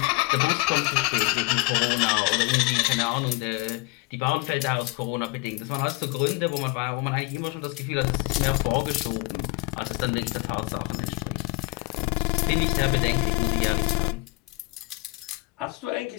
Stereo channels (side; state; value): right; quieter; 23.1 dB